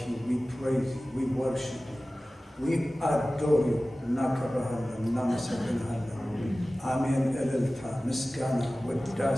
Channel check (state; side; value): normal; both; correlation 0.97